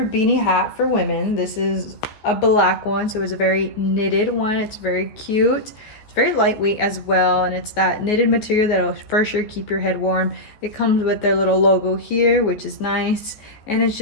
Beanie hat for women. This is a black one, so it's a very knitted one. It's very cute. It's very lightweight as well, and it's that knitted material that'll for sure keep your head warm. It comes with their little logo here, which is nice, and it's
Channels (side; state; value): right; late; 14 ms